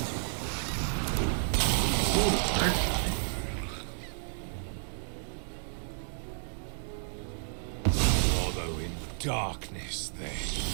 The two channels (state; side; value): silent; left; digital silence